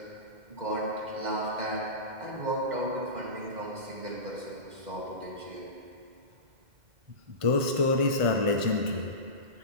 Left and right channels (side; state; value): left; late; 2.0 ms